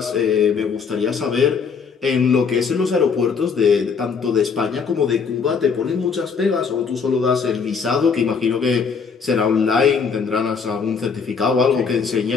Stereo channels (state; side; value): quieter; right; 5.7 dB